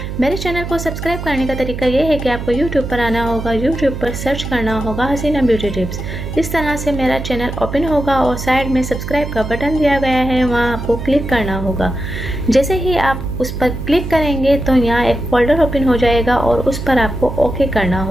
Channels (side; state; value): right; noise; hum, 7 dB below the sound